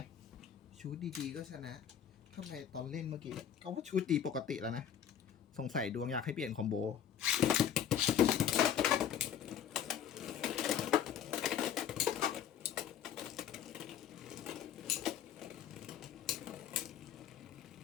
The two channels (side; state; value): right; quieter; 9.4 dB